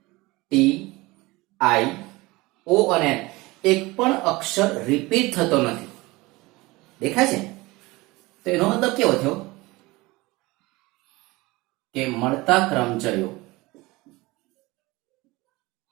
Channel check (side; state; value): left; quieter; 21.8 dB